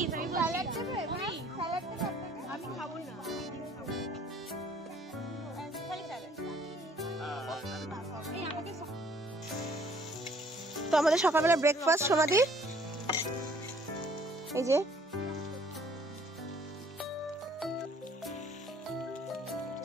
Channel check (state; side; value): normal; both; correlation 0.58